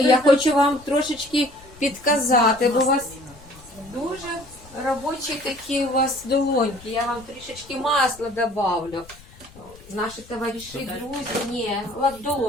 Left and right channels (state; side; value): noise; left; rumble, 22 dB below the sound